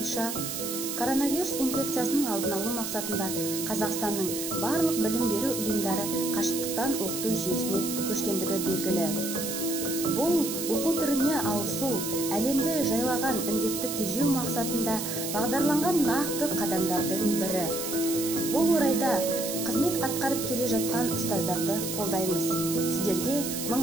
коронавирус инфекциясының алдын алу мақсатында Қазақстанның барлық білім беру ұйымдары қашықтықтан оқыту жүйесіне көшкендігі белгілі. Бұл оқу түріне ауысу әлемді жайлаған індетті тежеу мақсатында бағдарланған нақты қадамдардың бірі. Бұл орайда қызмет атқарып келе жатқан ұстаздарды қолдаймыз. Сіздерге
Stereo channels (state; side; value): noise; right; hiss, 5 dB below the sound